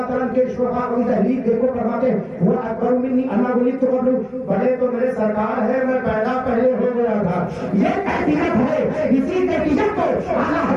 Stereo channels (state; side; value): identical; both; correlation 1.00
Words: عنہ کے شفاء کی تحلیل دیکھو فرماتے وہ اکبر منی انا ولدت قبلہ, بڑے تو میرے سرکار ہے, میں پیدا پہلے ہو گیا تھا. یہ کیفیت ہے, اسی کیفیت کو اعلیٰ